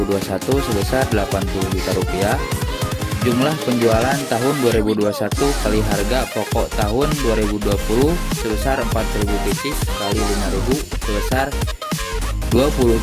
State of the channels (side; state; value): both; identical; correlation 1.00